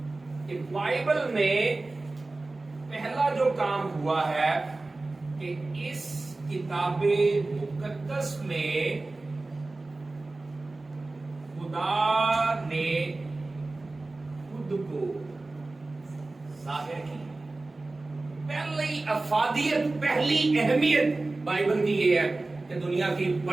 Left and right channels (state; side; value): quieter; left; 3.2 dB